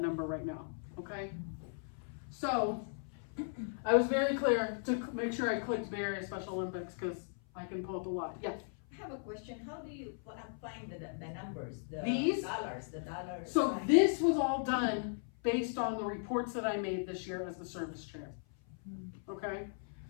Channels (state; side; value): silent; right; 53 dB below the other